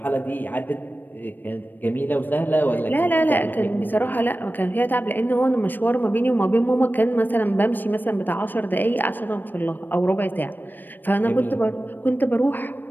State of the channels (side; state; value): right; late; 0.091 ms